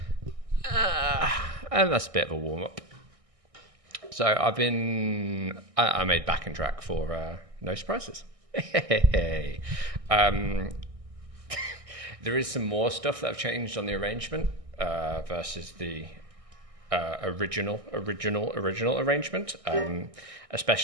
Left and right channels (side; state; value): left; late; 1.6 ms